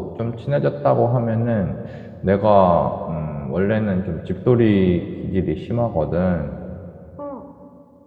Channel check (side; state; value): both; identical; correlation 1.00